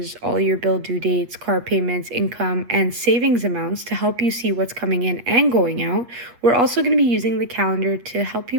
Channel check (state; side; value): late; left; 8.5 ms